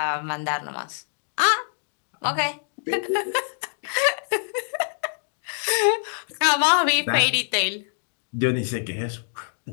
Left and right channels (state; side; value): silent; right; digital silence